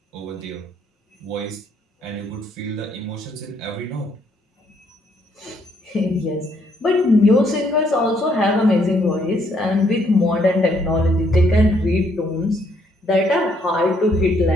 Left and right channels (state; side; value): normal; both; correlation 0.70